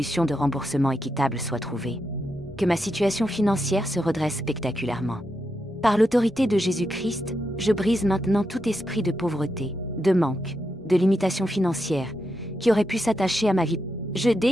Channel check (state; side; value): normal; both; correlation 0.84